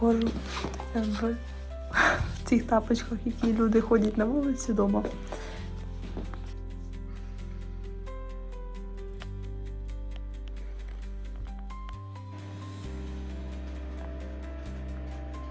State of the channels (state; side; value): identical; both; correlation 1.00